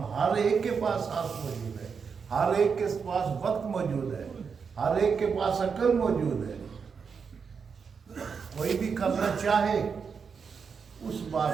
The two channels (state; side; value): quieter; left; 5.9 dB